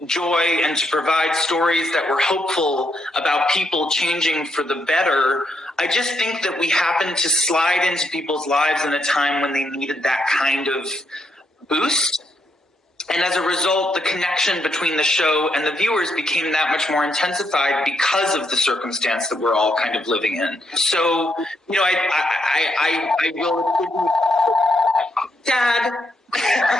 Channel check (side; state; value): both; normal; correlation 0.78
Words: joy and to provide stories that were hopeful about people changing for the better. I just think that we happened to slide into people's lives in a time when they needed that kind of boost. And as a result, the connection between the show and the viewers became that much more intensified because of the circumstance that we're all kind of living in. So, you know, I will, Dad.